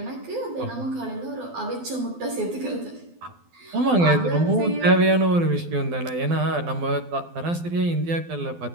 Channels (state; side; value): late; left; 12 ms